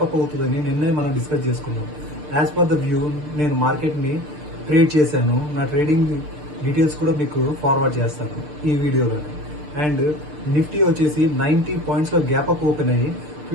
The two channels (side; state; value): left; late; 6.7 ms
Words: అప్ అవుతుందని నిన్నే మనం డిస్కస్ చేసుకున్నాం. యాజ్ పర్ ద వ్యూ నేను మార్కెట్ని ట్రేడ్ చేశాను. నా ట్రేడింగ్ డీటెయిల్స్ కూడా మీకు ఫార్వర్డ్ చేస్తాను ఈ వీడియోలోనే. అండ్ నిఫ్టీ వచ్చేసి 90 పాయింట్స్లో గ్యాప్ అప్ ఓపెన్ అయ్యి